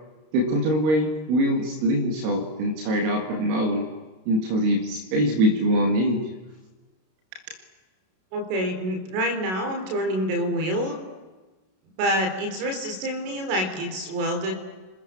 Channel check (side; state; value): left; late; 32 ms